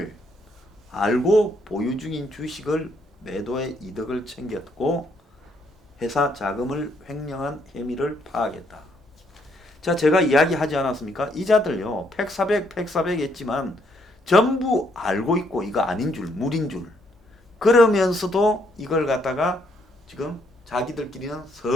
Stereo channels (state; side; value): normal; both; correlation 0.71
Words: 알고 보유 중인 주식을 매도해 이득을 챙겼고 회사 자금을 횡령한 혐의를 파악했다. 자, 제가 이야기하지 않았습니까? 이자들요, 팩400 했지만 전부 알고 있고 이거 아닌 줄, 물인 줄. 그러면서도 이걸 갖다가 지금 자기들끼리는